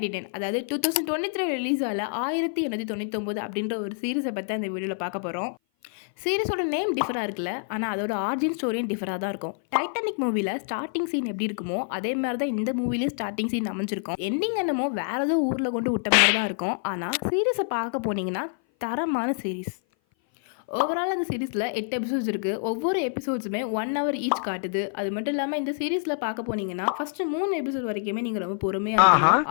அதாவது 2023 ரிலீஸ் ஆகல 1899 அப்படின்ற ஒரு சீரிஸை பற்றி அந்த வீடியோவில் பார்க்க போகிறோம். சீரிஸோட நேம் டிஃபராக இருக்குல்ல, ஆனால் அதோட ஆரிஜின் ஸ்டோரியும் டிஃபராக தான் இருக்கும். டைட்டானிக் மூவியில் ஸ்டார்டிங் சீன் எப்படி இருக்குமோ அதே மாதிரி தான் இந்த மூவிலையும் ஸ்டார்டிங் சீன் அமைஞ்சிருக்கும். எண்டிங் என்னமோ வேற ஏதோ ஊரில் கொண்டு விட்ட மாதிரி தான் இருக்கும். ஆனால் சீரிஸை பார்க்க போனீங்கன்னா தரமான சீரிஸ். ஓவரால் அந்த சீரீஸில் 8 எபிசோட்ஸ் இருக்குது. ஒவ்வொரு எபிசோட்ஸுமே 1 hour ஈச் காட்டுது. அது மட்டும் இல்லாமல் இந்த சீரீஸில் பார்க்க போனீங்கன்னா ஃபஸ்ட்டு 3 எபிசோட் வரைக்குமே நீங்கள் ரொம்ப பொறுமையாக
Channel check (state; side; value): silent; right; 57 dB below the other